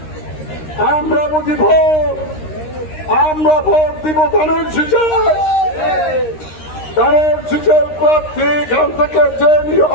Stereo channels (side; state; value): right; late; 13 ms